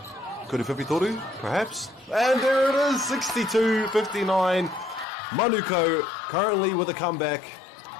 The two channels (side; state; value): right; drops out; at 5.1 s